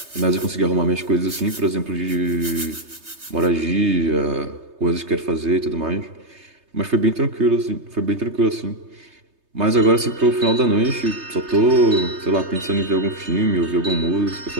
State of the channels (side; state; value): left; late; 3.3 ms